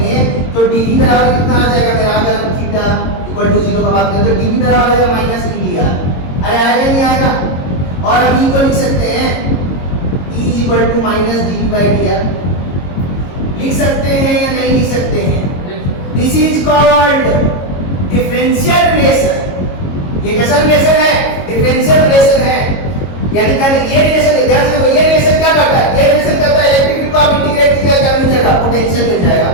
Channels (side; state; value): right; late; 22 ms